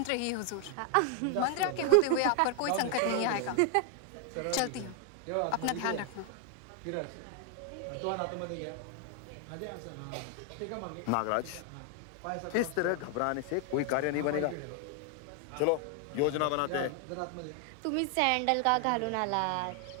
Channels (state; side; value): different; both; correlation 0.00